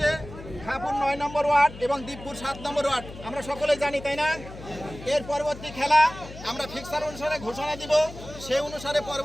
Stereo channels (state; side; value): noise; left; hum, 14 dB below the sound